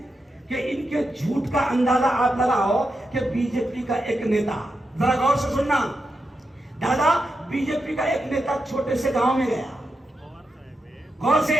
कि इनके झूठ का अंदाजा आप लगाओ कि बीजेपी का एक नेता, जरा गौर से सुनना दादा, बीजेपी का एक नेता छोटे से गांव में गया, गौर से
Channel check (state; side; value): normal; both; correlation 0.87